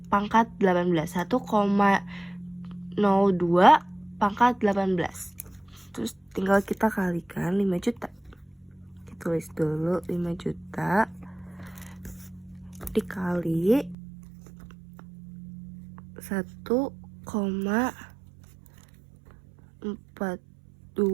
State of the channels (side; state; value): left; drops out; at 14.0 s